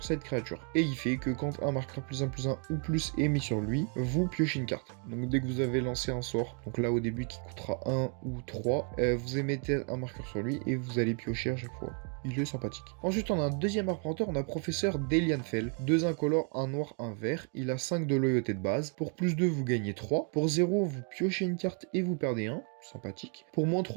cette créature. Et il fait que quand un marqueur +1/+1 ou plus est mis sur lui, vous piochez une carte. Donc dès que vous avez lancé un sort, donc là au début qui coûtera 1 ou 3, vous émettez un marqueur sur lui et vous allez piocher à chaque fois. Il est sympathique. Ensuite, on a un deuxième arpenteur, on a Professeur Delianfell. 2 incolores, un noir, un vert. Il a 5 de loyauté de base. Pour +2, vous gagnez 3. Pour 0, vous piochez une carte et vous perdez 1. Sympathique. Pour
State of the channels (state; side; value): quieter; left; 37.7 dB